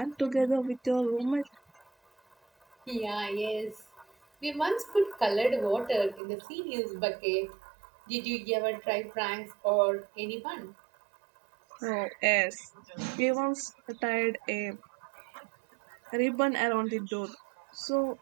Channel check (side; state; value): left; drops out; at 6.2 s